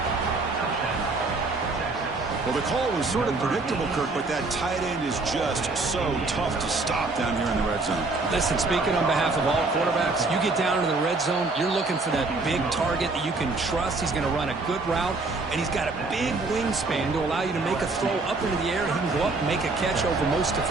Well, the call was sort of predictable, Kirk, but that tight end is just so tough to stop down here in the red zone. Listen, speaking on behalf of all quarterbacks, you get down to the red zone, you're looking for that big target that you can trust. He's going to run a good route, and he's got a big wingspan to allow you to make a throw up into the air. He can go up and make a catch over most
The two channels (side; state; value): left; quieter; 3.5 dB